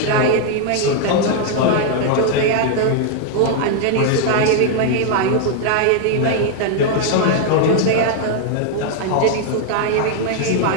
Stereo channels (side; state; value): both; different; correlation 0.00